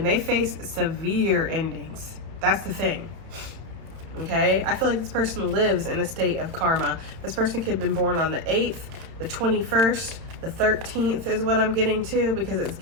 they face severe endings. That's the thing. Okay, I feel like this person lives in a state of karma. This person could have been born on the 8th, the 21st, the 13th is what I'm getting to, because it's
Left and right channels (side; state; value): left; late; 31 ms